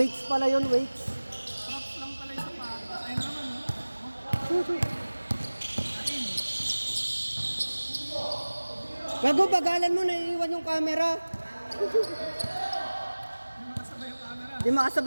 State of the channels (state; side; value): inverted; both; correlation -1.00